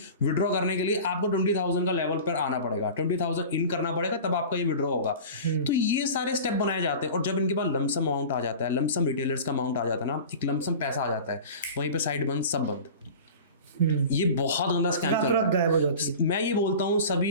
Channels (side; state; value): both; inverted; correlation -0.36